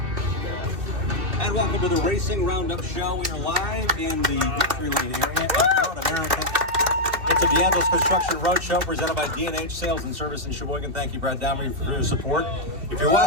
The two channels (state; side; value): late; left; 2.8 ms